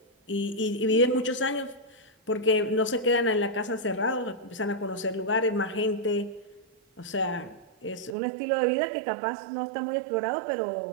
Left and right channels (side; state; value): left; drops out; at 8.2 s